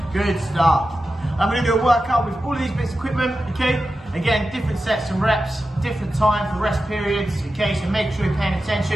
Good stuff. I'm gonna do a workout with all of these bits of equipment, okay? Again, different sets and reps, different time for rest periods, okay? So make sure you're paying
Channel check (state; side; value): normal; both; correlation 0.92